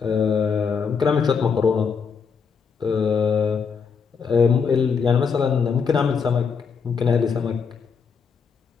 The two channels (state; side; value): quieter; right; 6.0 dB